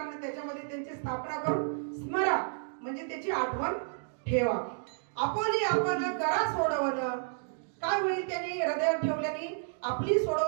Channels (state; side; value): silent; left; digital silence